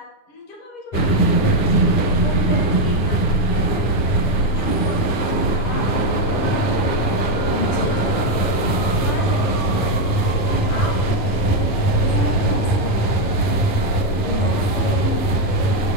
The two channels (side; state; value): right; late; 9.8 ms